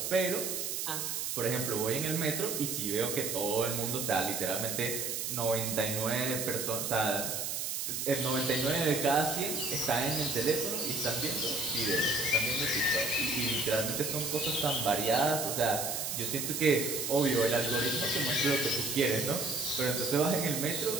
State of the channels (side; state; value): right; noise; hiss, 2 dB below the sound